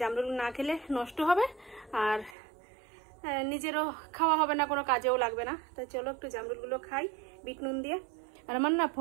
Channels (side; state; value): left; drops out; at 2.4 s